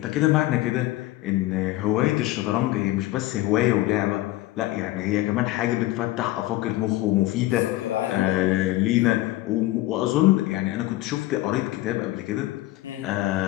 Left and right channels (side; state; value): right; quieter; 16.9 dB